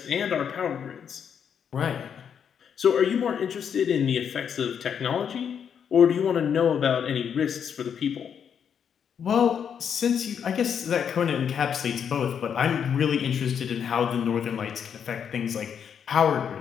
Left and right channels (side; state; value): right; quieter; 7.8 dB